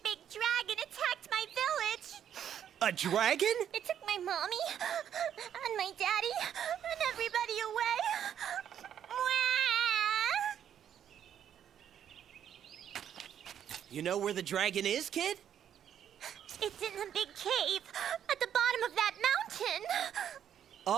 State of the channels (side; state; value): left; quieter; 9.5 dB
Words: big dragon attacked my village! A dragon? It took my mommy and my daddy and everybody away. You know where the dragon is, kid? It's in the big cave at the bottom of that mountain.